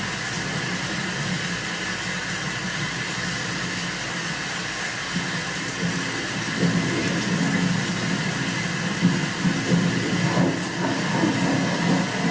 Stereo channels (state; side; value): identical; both; correlation 1.00